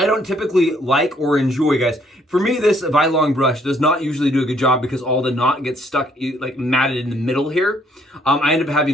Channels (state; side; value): normal; both; correlation 0.66